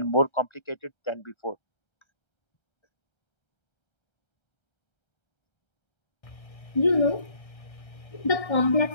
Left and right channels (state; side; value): late; right; 1.6 ms